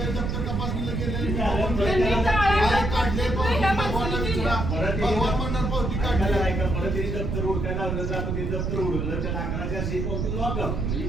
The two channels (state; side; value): noise; right; rumble, 1 dB below the sound